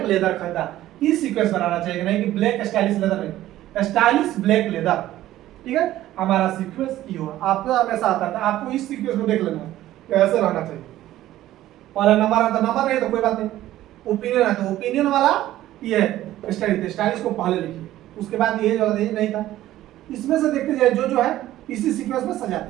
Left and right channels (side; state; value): left; quieter; 14.2 dB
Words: लेदर खरीदा। ये सीक्वेंस बनाना चाहिए, नहीं कि ब्लैक स्टाइलिश लेदर नहीं, स्टाइलिश ब्लैक लेदर, ठीक है। हमारा सीक्वेंस ये हुआ, आपको हमेशा आता था, आपको इस सीक्वेंस को देख लेना है कैसे रहना चाहिए। पहला नंबर आता, नंबर नहीं तो कोई बात नहीं, ओपिनियन है तो ओपिनियन वाला ये है स्टाइलिश, स्टाइलिश को पहले लिखिए। उसके बाद ये जो नहीं था, इसमें से देखते जाए जो है इसी सीक्वेंस में सजा